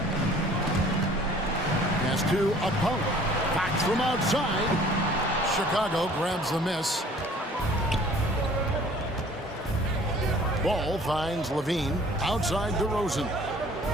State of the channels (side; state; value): both; normal; correlation 0.52